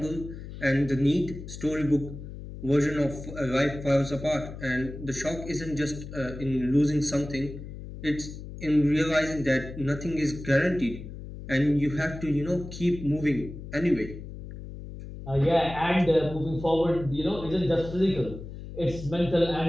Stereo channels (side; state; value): left; noise; hum, 11 dB below the sound